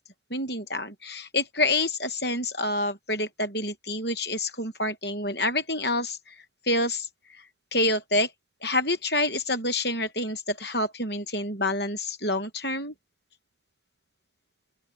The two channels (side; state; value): both; normal; correlation -0.13